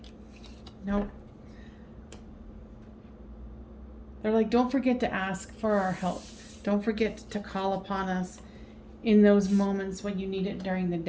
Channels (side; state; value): both; identical; correlation 1.00